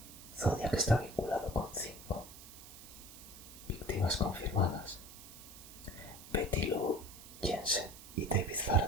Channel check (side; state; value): right; noise; hiss, 16 dB below the sound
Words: Zodiac está vinculado con 5 víctimas confirmadas: Betty Lou Jensen y David